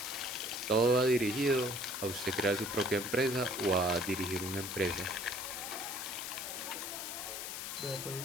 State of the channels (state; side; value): noise; left; hiss, 6 dB below the sound